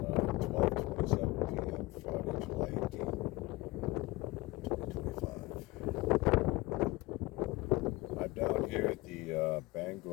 p.m. Friday, July 18th, 2025. I'm down here at the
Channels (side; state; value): right; quieter; 21.1 dB